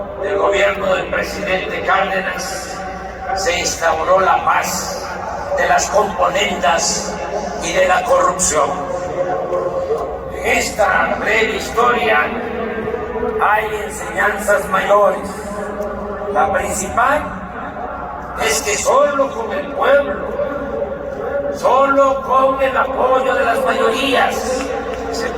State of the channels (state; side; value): identical; both; correlation 1.00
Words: del gobierno del presidente Cárdenas se instauró la paz de las componendas y de la corrupción. En esta breve historia hay enseñanzas mayores. La principal es que solo con el pueblo, solo con el apoyo de las mayorías, se